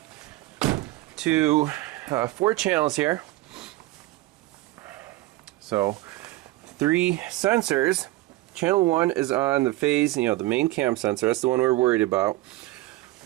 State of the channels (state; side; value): quieter; left; 18.2 dB